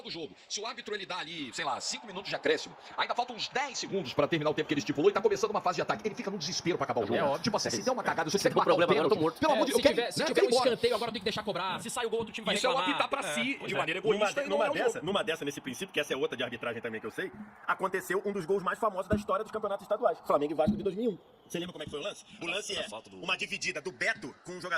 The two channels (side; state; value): both; identical; correlation 1.00